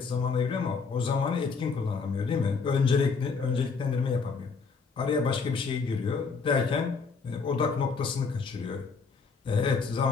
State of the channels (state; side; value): quieter; right; 5.0 dB